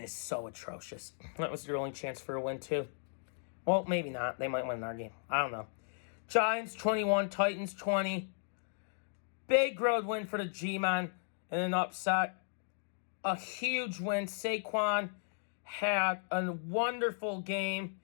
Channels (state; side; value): silent; right; digital silence